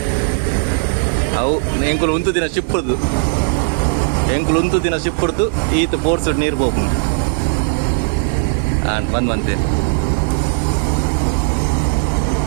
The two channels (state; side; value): silent; left; digital silence